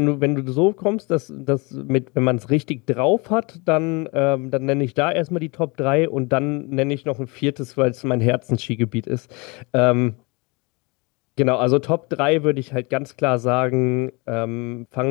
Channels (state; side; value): quieter; right; 28.1 dB